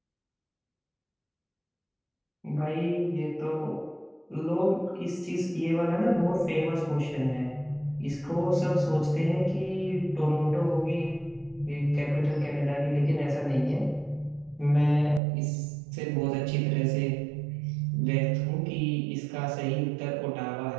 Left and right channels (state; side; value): drops out; left; at 15.2 s